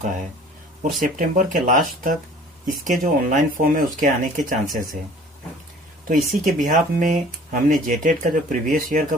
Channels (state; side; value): normal; both; correlation 0.49